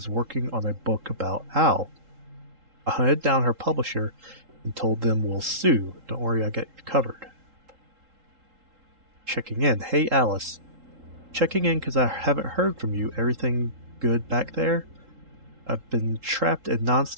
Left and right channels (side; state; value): left; late; 3.8 ms